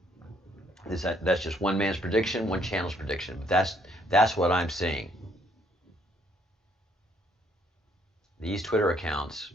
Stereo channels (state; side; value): normal; both; correlation 0.67